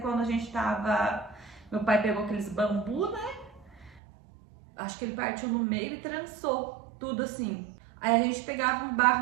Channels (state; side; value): drops out; left; at 4.0 s